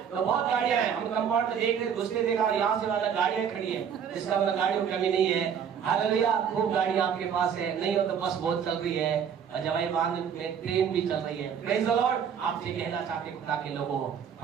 तो बहुत गाड़ियां हैं, हम कंपाउंड में देख रहे, घुसते देखा यहाँ से वाला गाड़ियां खड़ी है, इसका मतलब गाड़ियों की कमी नहीं है। हालेलुया। खूब गाड़ियां आपके पास है, नहीं हो तो बस बहुत चल रही है, जवाई बांध में ट्रेन भी चल रही है। Praise the Lord. आपसे कहना चाहते खुदा के लोगों,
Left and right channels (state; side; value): quieter; left; 7.8 dB